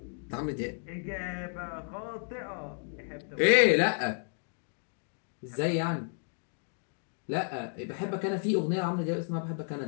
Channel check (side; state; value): right; silent; 56 dB below the other